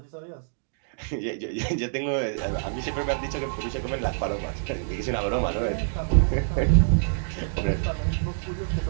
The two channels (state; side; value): silent; left; digital silence